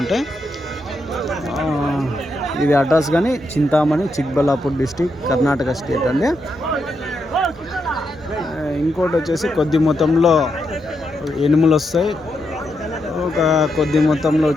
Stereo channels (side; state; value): both; normal; correlation 0.82